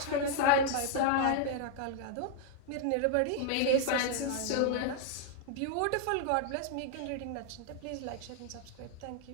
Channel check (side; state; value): both; different; correlation 0.00